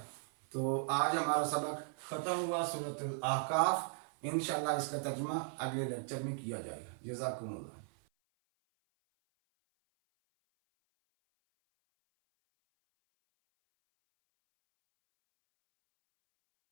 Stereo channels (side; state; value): left; silent; 53 dB below the other